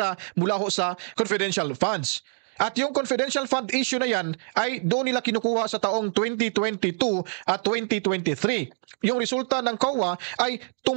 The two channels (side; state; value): left; silent; digital silence